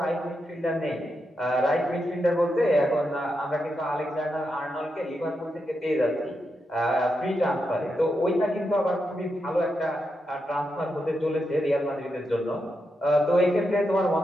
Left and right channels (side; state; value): both; normal; correlation 0.85